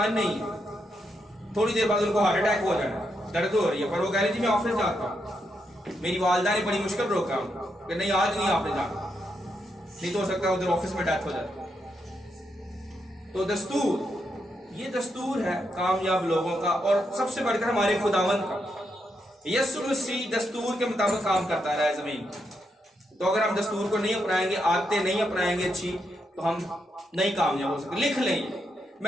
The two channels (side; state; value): both; normal; correlation 0.81